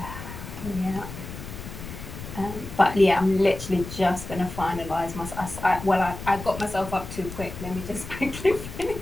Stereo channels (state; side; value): noise; left; rumble, 11 dB below the sound